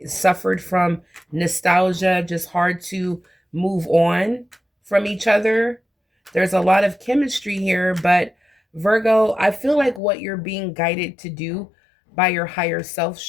suffered from nostalgia, just hard to move on from each other. There's a lot of chemistry here, but Virgo, I feel like what you're being guided to do by your higher self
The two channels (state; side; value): drops out; right; at 10.0 s